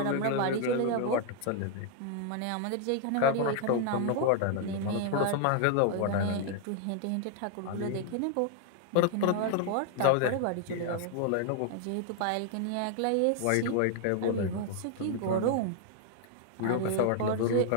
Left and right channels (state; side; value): different; both; correlation 0.00